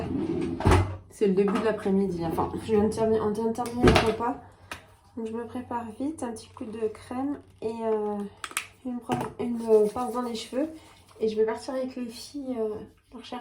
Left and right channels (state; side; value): identical; both; correlation 1.00